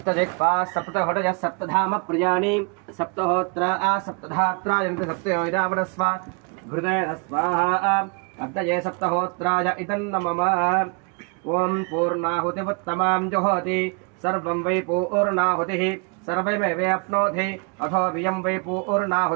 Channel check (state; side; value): quieter; left; 36.2 dB